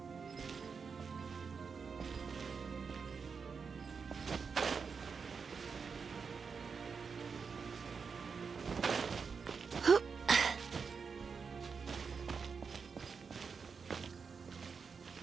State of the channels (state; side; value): quieter; left; 5.6 dB